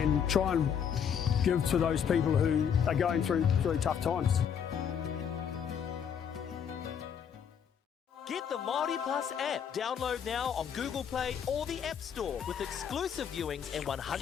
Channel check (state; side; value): quieter; right; 7.9 dB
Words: and try and give to those people who are going through really tough times. Get the MāORI Plus app. Download now on Google Play or the App Store with exclusive viewings and 100%